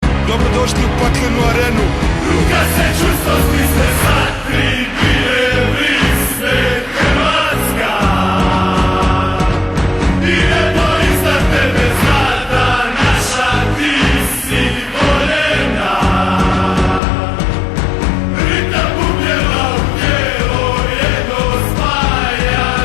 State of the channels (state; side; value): drops out; right; at 17.0 s